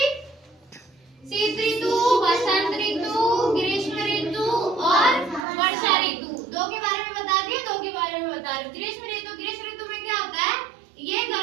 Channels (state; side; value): drops out; left; at 5.5 s